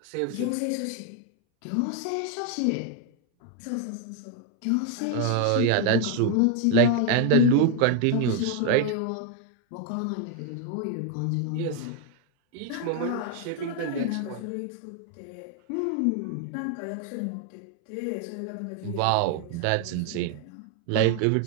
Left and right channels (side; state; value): both; different; correlation 0.01